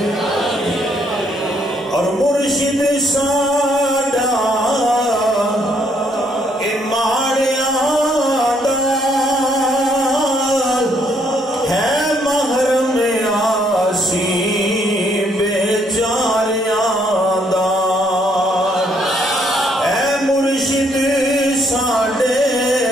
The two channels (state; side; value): normal; both; correlation 0.70